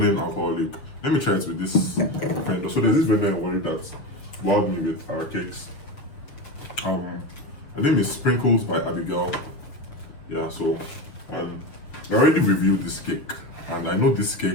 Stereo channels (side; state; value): right; late; 7.1 ms